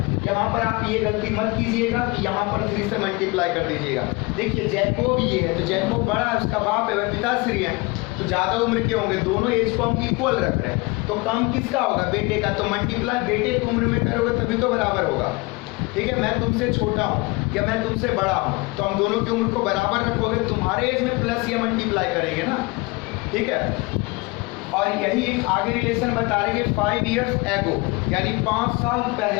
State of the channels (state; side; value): quieter; right; 25.1 dB